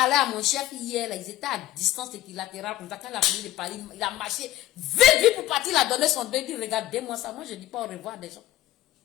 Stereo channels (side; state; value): right; quieter; 15.0 dB